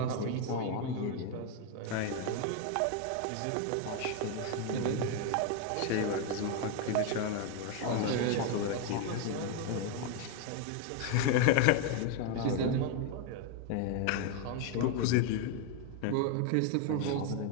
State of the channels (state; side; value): different; both; correlation 0.01